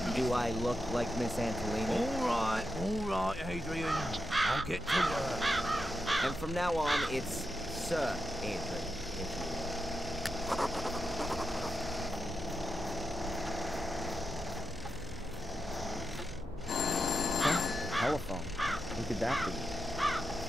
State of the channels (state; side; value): normal; both; correlation 0.86